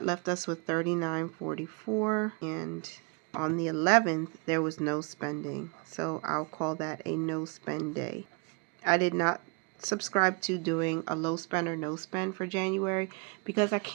left us with $39.44, and on the 11th there was no spending. So I'll call that a no spend day. I did not subscribe to doing a low spend or no spend for January because I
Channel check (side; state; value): left; quieter; 32.7 dB